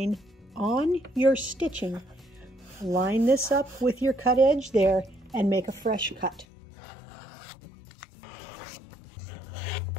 on your stitching. Line this up with your cut edge there and make a fresh cut.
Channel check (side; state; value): right; drops out; at 6.5 s